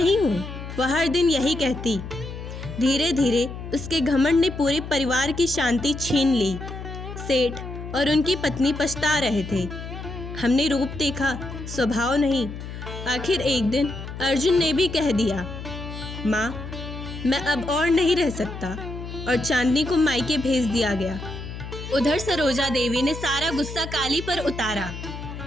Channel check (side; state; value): left; noise; hum, 9 dB below the sound